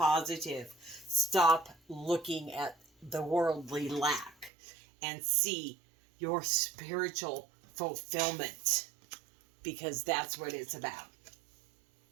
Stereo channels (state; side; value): drops out; left; at 4.5 s